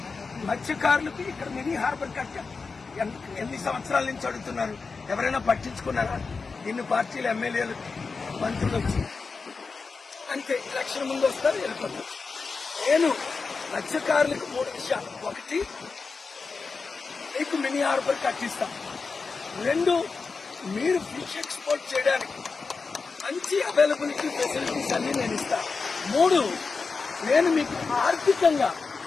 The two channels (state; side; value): quieter; right; 4.5 dB